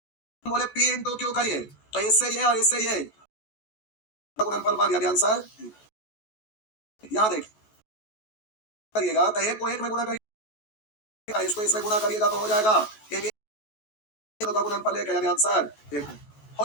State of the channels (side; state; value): right; late; 14 ms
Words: बोले पी इंटू क्यू करिए तो इससे ये और इससे ये गुणनफल 1 यानी आंसर। यहाँ देखिए करिएगा तो एक को एक में गुणा करिएगा, इसको इसमें गुणा करिएगा तो हो जाएगा ए बी का गुणनफल 1 यानी आंसर 1 हो